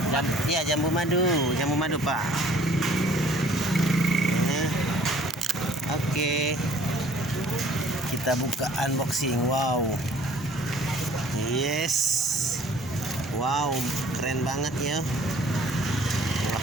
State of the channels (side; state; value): both; normal; correlation 0.55